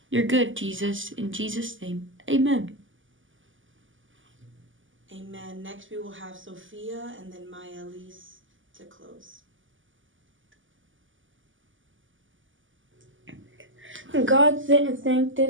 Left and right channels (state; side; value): late; left; 0.57 ms